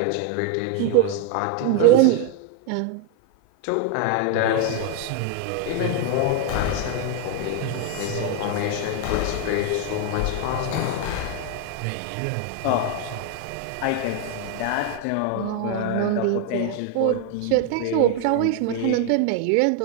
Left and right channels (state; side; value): different; both; correlation 0.01